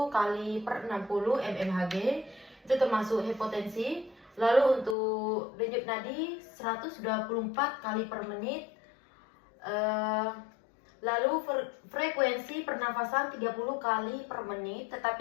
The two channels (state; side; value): drops out; right; at 5.0 s